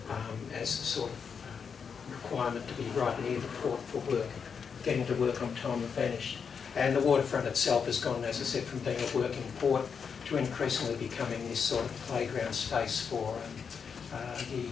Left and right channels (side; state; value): right; quieter; 6.3 dB